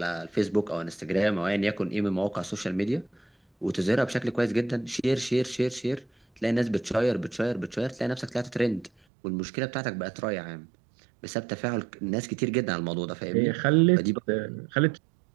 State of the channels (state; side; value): drops out; left; at 8.9 s